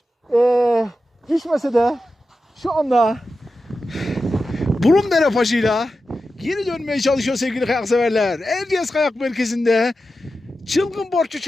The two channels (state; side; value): normal; both; correlation 0.92